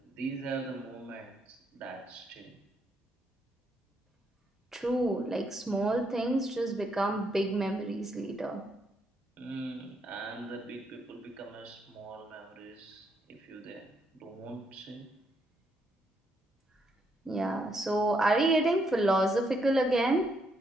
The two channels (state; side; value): normal; both; correlation 0.76